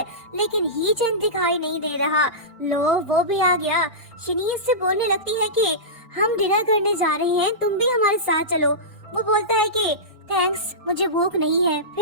लेकिन ही चैन दिखाई नहीं दे रहा। लो, वो भी आ गया। शनिया से बोलने लगती है कि हम डिनर करने जा रहे हैं, तुम भी हमारे साथ चलो। वो बोलता है कि थैंक्स, मुझे भूख नहीं है,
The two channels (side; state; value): both; normal; correlation -0.17